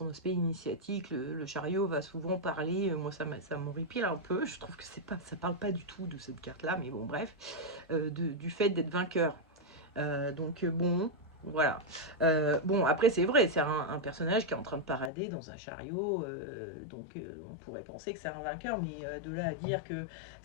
aspect initiatique. Le chariot va souvent parler, moi ça m'horripile un peu, je trouve que ça parle pas du tout de cette carte là, mais bon bref, du fait d'être vainqueur. Donc bon, voilà. Bon, après c'est vrai, c'est un personnage qui est en train de parader dans un chariot, donc on pourrait penser que c'est un vainqueur, mais de là à dire que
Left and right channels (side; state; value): right; drops out; at 15.1 s